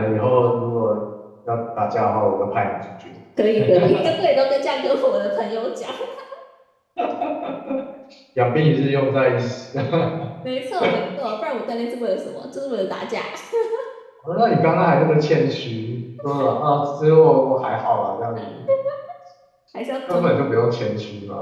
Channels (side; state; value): both; identical; correlation 1.00